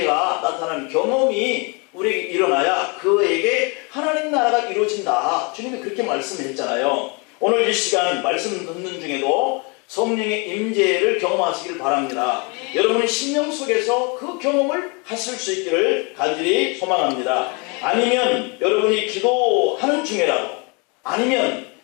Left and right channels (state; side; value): quieter; right; 31.6 dB